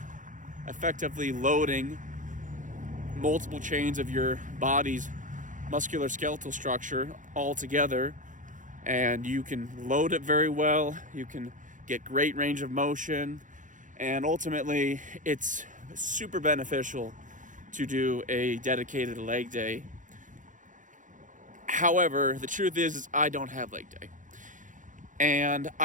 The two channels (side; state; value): left; late; 0.37 ms